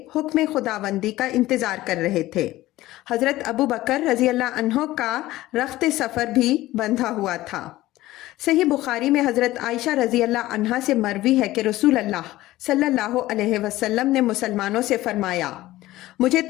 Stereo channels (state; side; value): quieter; right; 16.6 dB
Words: حکم خداوندی کا انتظار کر رہے تھے۔ حضرت ابو بکر رضی اللہ عنہ کا رخت سفر بھی بندھا ہوا تھا۔ صحیح بخاری میں حضرت عائشہ رضی اللہ عنہا سے مروی ہے کہ رسول اللہ صلی اللہ علیہ وسلم نے مسلمانوں سے فرمایا، مجھے